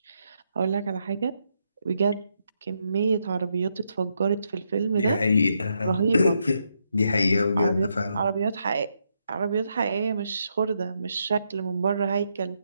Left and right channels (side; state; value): both; inverted; correlation -0.79